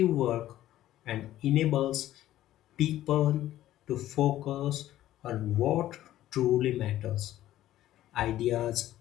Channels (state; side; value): quieter; right; 13.7 dB